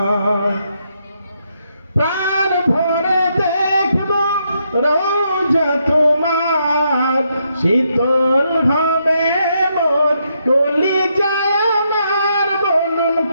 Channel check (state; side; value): inverted; both; correlation -0.78